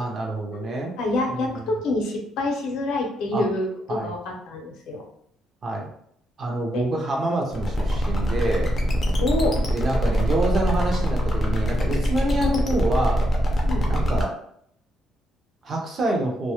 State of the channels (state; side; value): normal; both; correlation 0.81